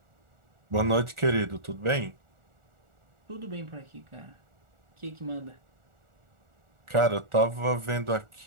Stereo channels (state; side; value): late; left; 1.4 ms